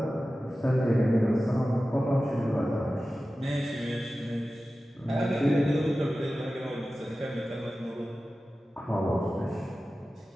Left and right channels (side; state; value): both; normal; correlation 0.95